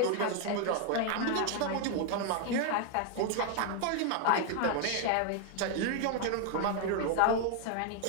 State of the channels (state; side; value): different; both; correlation 0.00